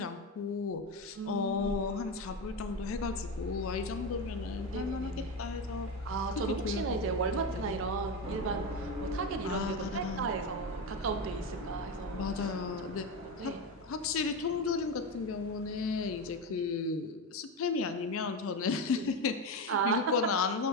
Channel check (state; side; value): normal; both; correlation 0.16